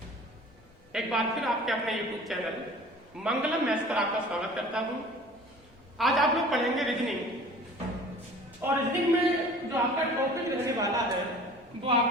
एक बार फिर आपके अपने YouTube चैनल मंगलम मैथ्स पर आपका स्वागत करता हूं। आज आप लोग पढ़ेंगे रीजनिंग और रीजनिंग में जो आपका टॉपिक रहने वाला है वो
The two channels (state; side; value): normal; both; correlation 0.45